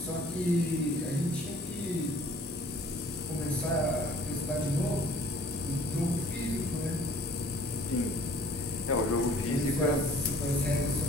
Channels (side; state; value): both; normal; correlation 0.53